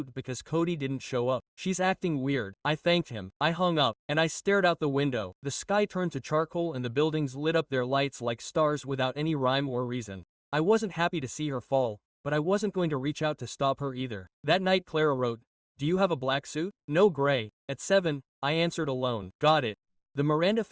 because Cody didn't show up. She's acting weird. I thanked him. I hung up, and I stared out the window. The sky turned to charcoal and the buildings lit up their lights like stars without any rhyme or reason. I wasn't happy to see her fall, but I wasn't going to reach out to stop her either. That night Clara wrote, "Do you have a black suit?" "No, gray." At 7, I answered alone. "Got it." The Miranda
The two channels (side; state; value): both; identical; correlation 1.00